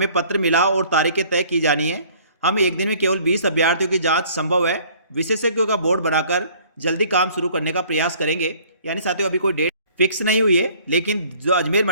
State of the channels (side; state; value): both; inverted; correlation -0.55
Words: पत्र मिला और तारीखें तय की जानी है। हम एक दिन में केवल 20 अभ्यर्थियों की जांच संभव है। विशेषज्ञों का बोर्ड बनाकर जल्दी काम शुरू करने का प्रयास करेंगे। यानी साथियों अभी कोई डेट फिक्स नहीं हुई है, लेकिन जो अजमेर